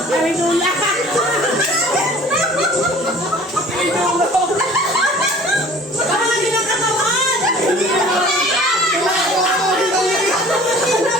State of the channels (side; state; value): both; normal; correlation 0.47